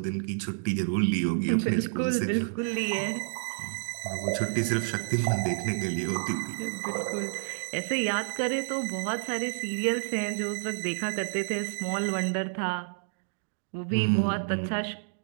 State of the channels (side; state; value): left; silent; digital silence